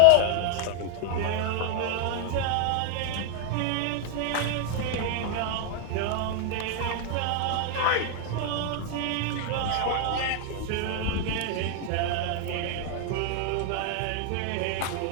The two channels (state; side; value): different; both; correlation 0.01